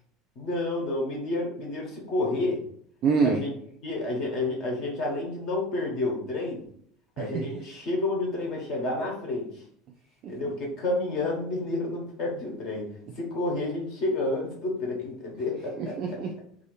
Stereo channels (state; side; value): normal; both; correlation 0.30